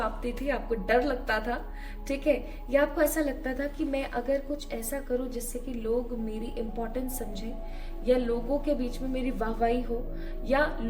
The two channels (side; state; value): both; identical; correlation 1.00